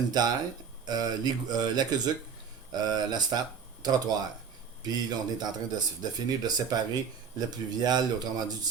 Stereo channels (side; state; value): left; quieter; 6.5 dB